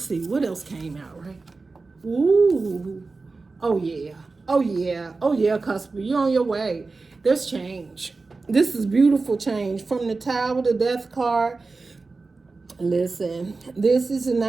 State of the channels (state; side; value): quieter; left; 3.9 dB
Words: see what else came out, right? Ooh, oh yeah, Cusp, you're on your way. There's change. This is beautiful change from the Tower, the Death card. Listen, this is the